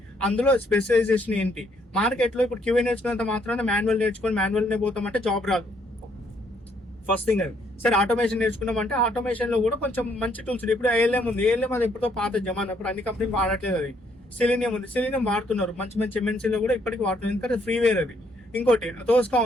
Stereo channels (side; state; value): both; normal; correlation 0.69